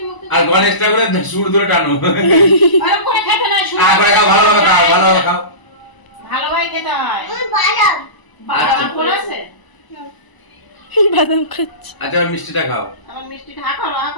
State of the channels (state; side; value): late; right; 1.0 ms